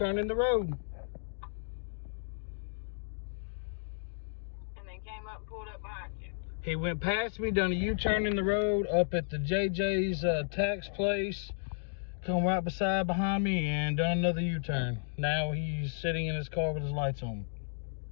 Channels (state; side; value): silent; right; digital silence